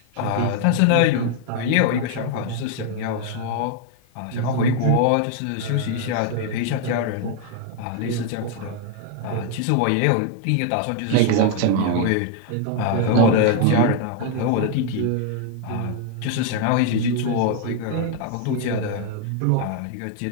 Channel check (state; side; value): different; both; correlation 0.00